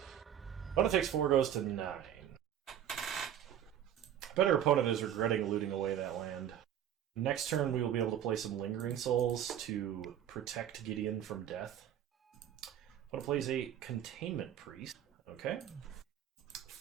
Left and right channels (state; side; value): quieter; left; 10.3 dB